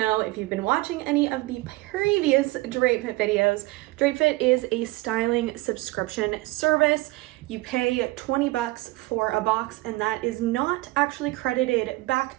if you've been watching any of the previous Drape Fit videos, Drape Fit is a styling subscription service. You pay 20 bucks for a box and that is not actually credited back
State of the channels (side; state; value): left; quieter; 20.8 dB